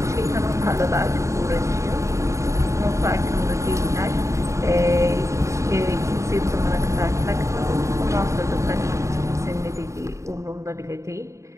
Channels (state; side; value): late; left; 0.14 ms